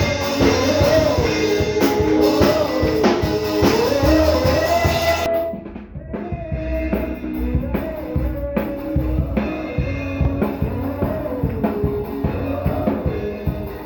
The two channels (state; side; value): identical; both; correlation 1.00